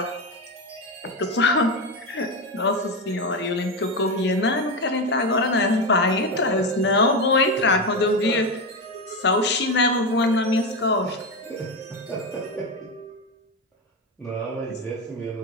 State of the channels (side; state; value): both; normal; correlation 0.14